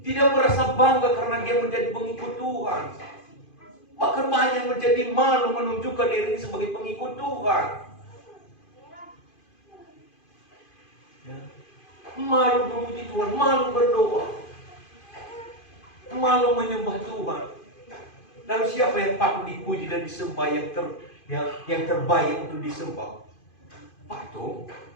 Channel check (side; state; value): right; late; 2.5 ms